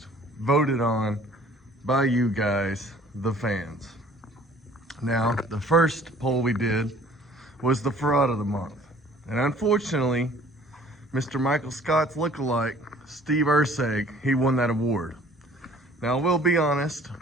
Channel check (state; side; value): normal; both; correlation 0.53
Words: voted on by you guys, the fans. Now, the first poll we did was the fraud of the month, and unfortunately, Mr. Michael Scott's lookalike, Steve Urseg, he won that award. Now, we'll be honest,